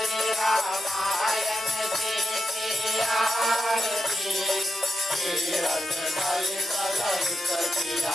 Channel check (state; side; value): normal; both; correlation 0.87